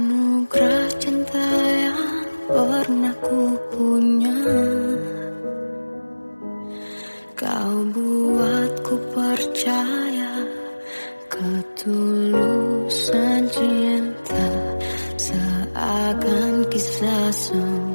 cinta yang pernah ku punya, kau buatku percaya ketulusan cinta, seakan kisah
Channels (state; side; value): inverted; both; correlation -1.00